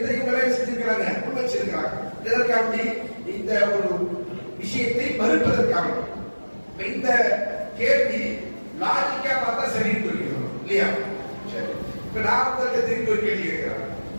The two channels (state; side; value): inverted; both; correlation -1.00